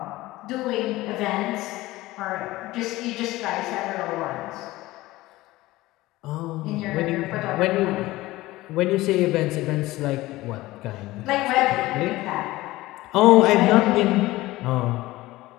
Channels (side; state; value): right; quieter; 18.3 dB